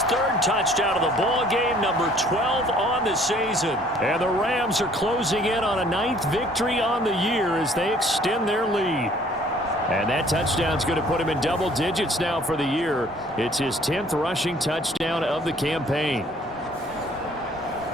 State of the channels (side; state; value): both; normal; correlation 0.57